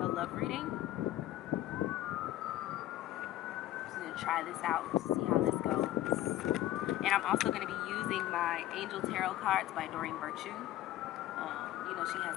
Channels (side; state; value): right; quieter; 14.4 dB